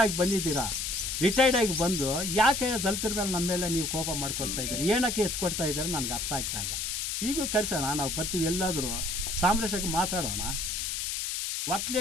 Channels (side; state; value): left; noise; hiss, 2 dB below the sound